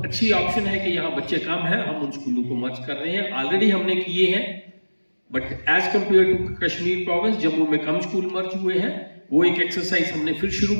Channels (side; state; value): both; inverted; correlation -1.00